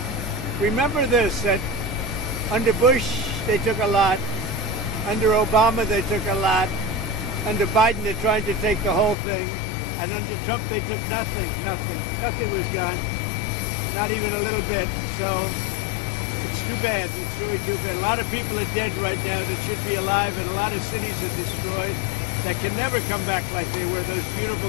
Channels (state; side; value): drops out; right; at 9.2 s